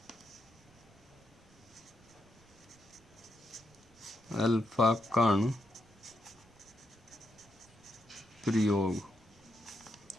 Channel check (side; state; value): right; noise; rumble, 27 dB below the sound